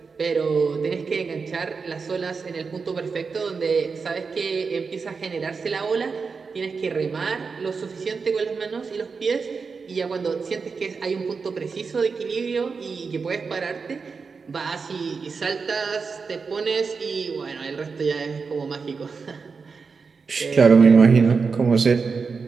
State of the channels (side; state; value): left; quieter; 5.0 dB